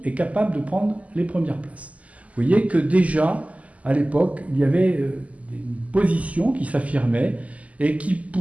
et capables de prendre les premières places. Vous voyez que déjà, à l'époque, il y avait une position qui s'affirmait et qui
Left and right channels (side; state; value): left; late; 0.070 ms